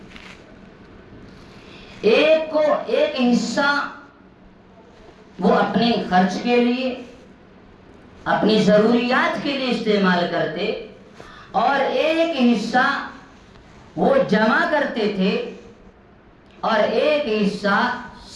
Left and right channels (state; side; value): identical; both; correlation 1.00